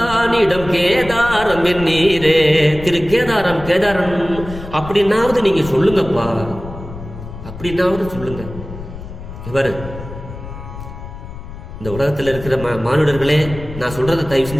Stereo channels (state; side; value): noise; left; rumble, 12 dB below the sound